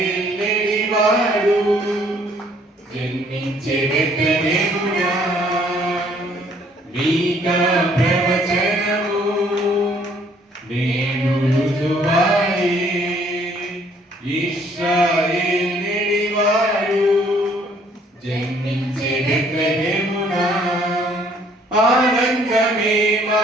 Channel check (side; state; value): both; normal; correlation 0.62